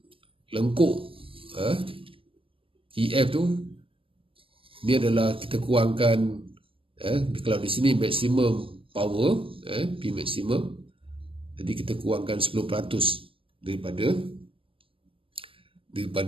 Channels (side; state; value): left; late; 0.26 ms